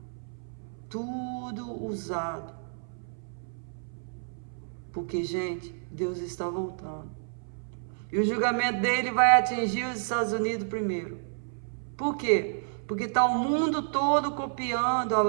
tudo usado. Porque, gente, Deus está voltando. E o julgamento dele vai atingir os Estados Unidos primeiro. Por quê? Porque está o mundo todo copiando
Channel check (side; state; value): left; silent; 58 dB below the other